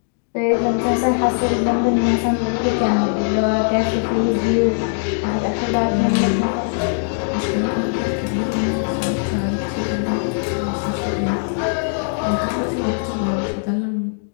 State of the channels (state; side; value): silent; right; digital silence